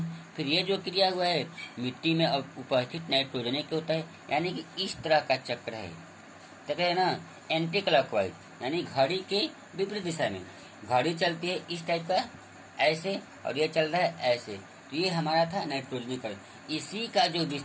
फिर ये जो क्रिया हुआ है मिट्टी में उपस्थित नाइट्रोजन के होता है, यानी कि इस तरह का चक्र है। तो है ना, एंटी क्लॉकवाइज, यानी घड़ी के विपरीत दिशा में घड़ी चलती है इस टाइप का ऐसे, और ये चल रहा है ऐसे। तो ये हमारा था नाइट्रोजनीकरण, इसी का जो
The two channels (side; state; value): both; identical; correlation 1.00